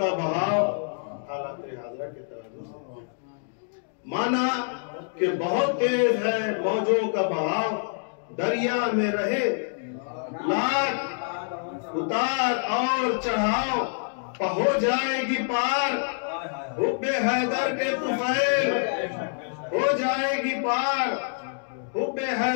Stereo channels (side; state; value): right; silent; digital silence